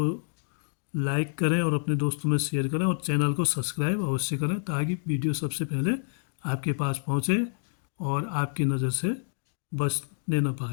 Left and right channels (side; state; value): right; silent; digital silence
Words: लाइक करें और अपने दोस्तों में शेयर करें और चैनल को सब्सक्राइब अवश्य करें ताकि वीडियो सबसे पहले आपके पास पहुंचे और आपकी नज़र से बचने न